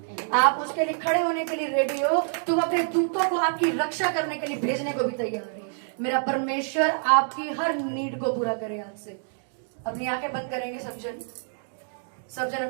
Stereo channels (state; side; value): silent; left; digital silence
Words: आप उसके लिए खड़े होने के लिए रेडी हो, तो अपने दूतों को आपकी रक्षा करने के लिए भेजने को भी तैयार है। मेरा परमेश्वर आपकी हर नीड को पूरा करे। आज से अपनी आंखें बंद करेंगे सब जन